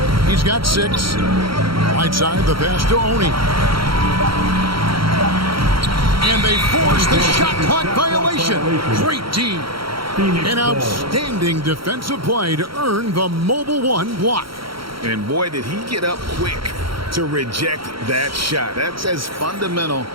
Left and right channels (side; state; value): left; late; 0.74 ms